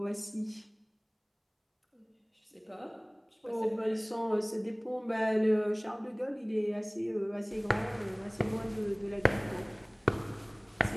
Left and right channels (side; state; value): both; identical; correlation 1.00